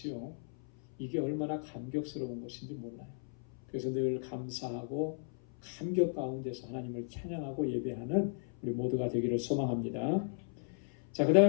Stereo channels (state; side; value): silent; right; 54 dB below the other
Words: 이게 얼마나 감격스러운 것인지 몰라요. 그래서 늘 감사하고 감격 가운데서 하나님을 찬양하고 예배하는 우리 모두가 되기를 소망합니다. 자, 그